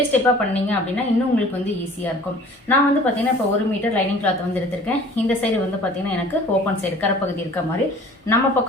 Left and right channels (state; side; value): normal; both; correlation 0.48